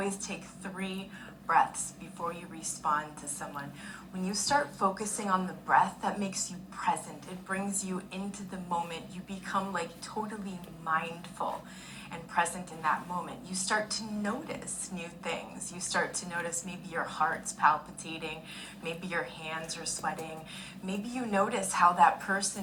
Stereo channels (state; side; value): identical; both; correlation 1.00